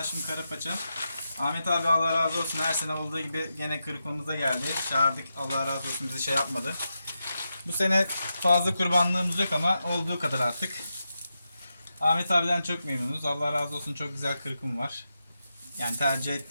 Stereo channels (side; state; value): both; inverted; correlation -0.88